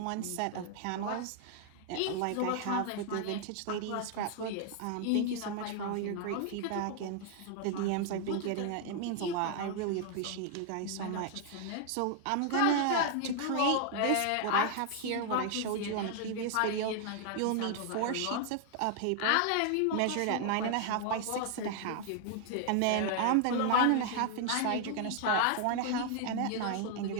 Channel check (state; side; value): different; both; correlation 0.00